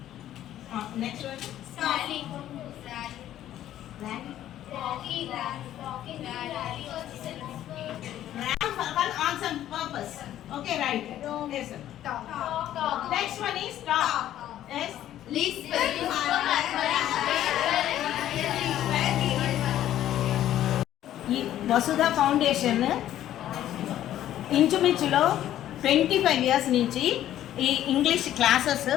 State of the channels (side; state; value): right; quieter; 12.3 dB